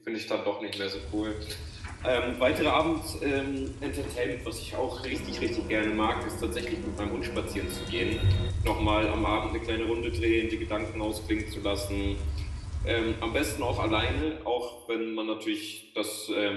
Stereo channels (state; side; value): identical; both; correlation 1.00